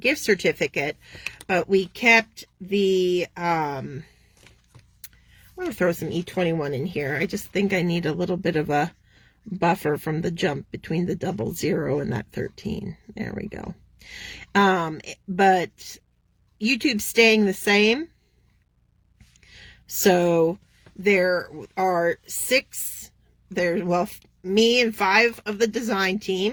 gift certificate. But we kept the, I'm going to throw some E21 in here. I just think I need a little bit of a buffer from the jump between the 00 and that 13. There we go. But YouTube's staying the same. So there are 6, me and 5 of the design team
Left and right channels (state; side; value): identical; both; correlation 1.00